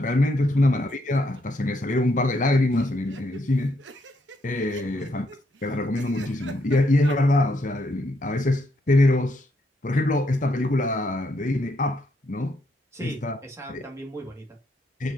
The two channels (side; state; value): both; normal; correlation 0.75